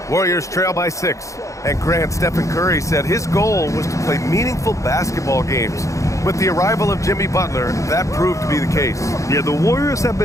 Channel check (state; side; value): late; right; 0.15 ms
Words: Warriors trail by 6, and Grant Stephen Curry said his goal was to play meaningful basketball games. With the arrival of Jimmy Butler, that proved to be the case. Yeah, the Warriors have